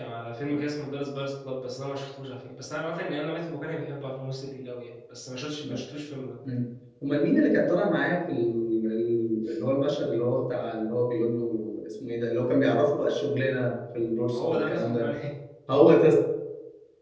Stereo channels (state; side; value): identical; both; correlation 1.00